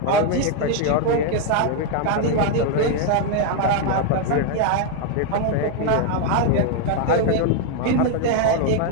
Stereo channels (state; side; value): different; both; correlation 0.01